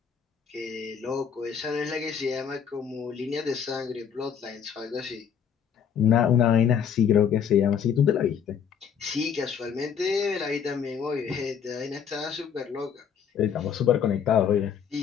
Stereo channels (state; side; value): quieter; right; 7.7 dB